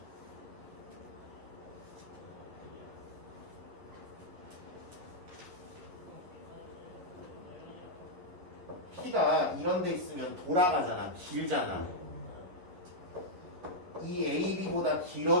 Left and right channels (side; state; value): left; late; 11 ms